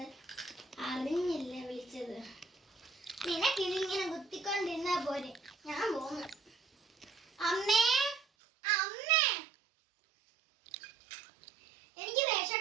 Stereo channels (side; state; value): left; drops out; at 8.2 s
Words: അറിഞ്ഞില്ല വിളിച്ചത്. നിനക്കിതിങ്ങനെ കുത്തിക്കൊണ്ടിരുന്നാ പോരെ. ഞാൻ പോന്നു. അമ്മേ അമ്മേ, എനിക്ക്